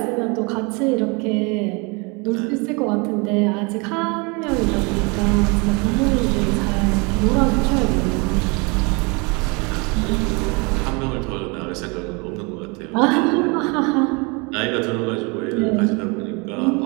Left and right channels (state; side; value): quieter; left; 29.7 dB